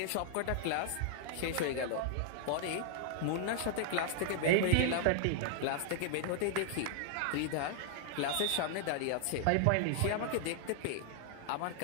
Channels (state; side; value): different; both; correlation -0.01